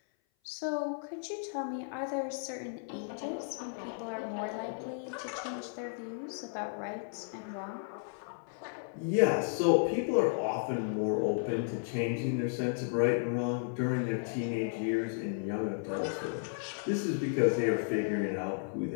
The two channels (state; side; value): silent; right; 55 dB below the other